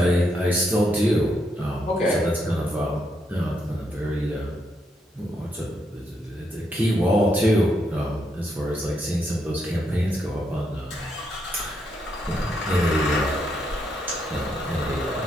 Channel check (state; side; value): normal; both; correlation 0.78